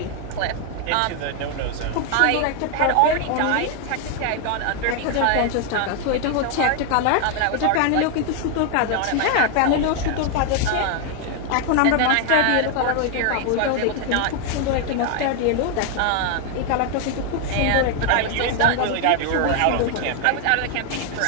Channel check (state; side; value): different; both; correlation 0.00